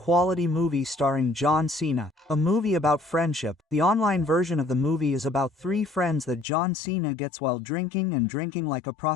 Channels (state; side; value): drops out; right; at 6.5 s